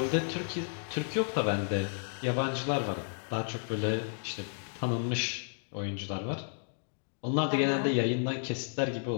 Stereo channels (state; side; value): silent; right; digital silence